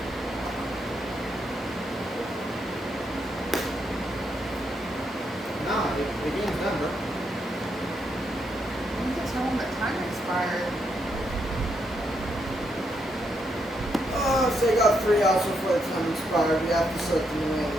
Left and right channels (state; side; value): normal; both; correlation 0.78